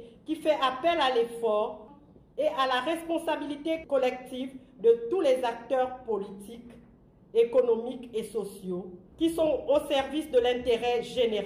qui fait appel à l'effort et à la responsabilité collective de tous les acteurs politiques, économiques et sociaux qui sont au service de l'intérêt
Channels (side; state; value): both; identical; correlation 1.00